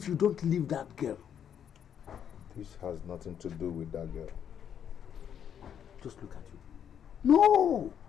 you don't leave that girl. This has nothing to do with that girl. Just look at you. No!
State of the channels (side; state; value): right; quieter; 8.7 dB